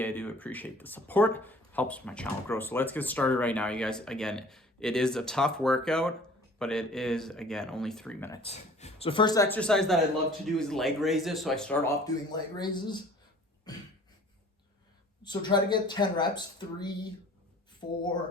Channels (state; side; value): normal; both; correlation 0.49